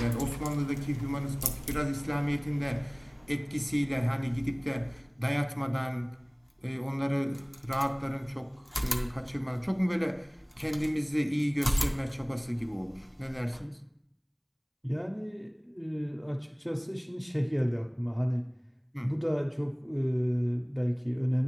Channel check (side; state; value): both; identical; correlation 1.00